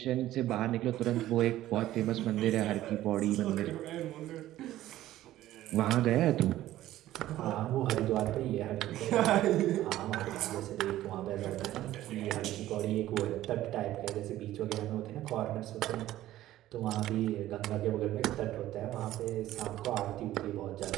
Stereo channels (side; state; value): left; quieter; 14.3 dB